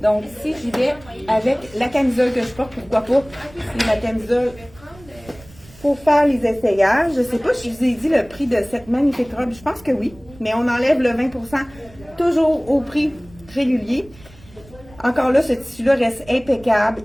si j'y vais avec la camisole que je porte, pourquoi pas? C'est la camisole pour faire les essayages. Je ne sais pas si je vous ai dit le prix de cette magnifique robe. Je pense que oui. Mais on enlève le 20%, toujours au prix régulier. Encore là, ce tissu-là reste impeccable.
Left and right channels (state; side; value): noise; right; rumble, 23 dB below the sound